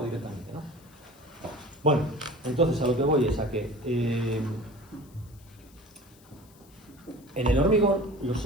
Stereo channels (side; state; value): left; noise; hiss, 27 dB below the sound